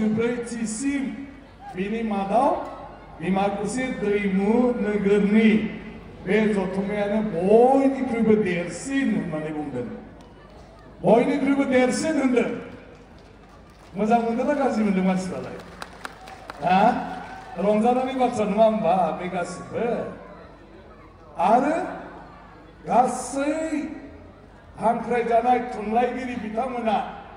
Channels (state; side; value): identical; both; correlation 1.00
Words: बिनि मादाव डिमाकुसि दैमु नोगोरनि बे जथुम्मायानो बयनिख्रुइबो देरसिन होननानै बुंदों बयनिख्रुइबो देरसिन होनदों मोजां मोनदोंना गाज्रि मोनदों मानसिफ्रालाय हा रंजानायनि बाथ्रा नङा होमबा बे गासिबो आरो गासै हांख्रायजानाय थुनलाइगिरि बिथांमोना